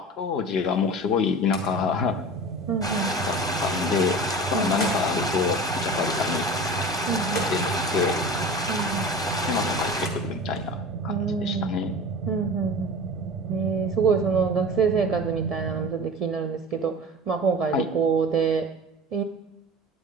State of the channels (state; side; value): normal; both; correlation 0.35